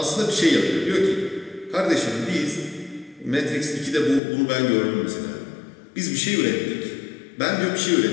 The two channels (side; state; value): right; drops out; at 4.2 s